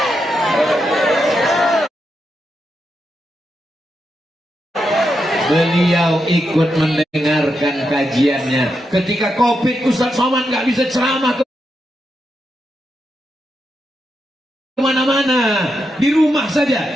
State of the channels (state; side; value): normal; both; correlation 0.85